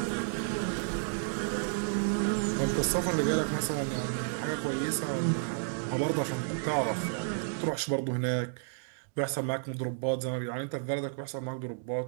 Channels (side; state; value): left; silent; digital silence